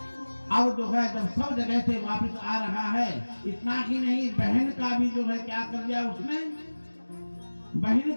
अब जो है जब सब जगह से वापस आ रहा है, इतना ही नहीं बहन का भी जो है क्या कर दिया उसने, बहन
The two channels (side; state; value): both; inverted; correlation -1.00